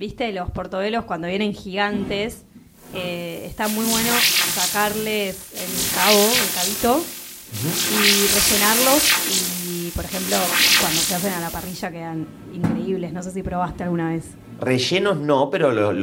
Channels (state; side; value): identical; both; correlation 1.00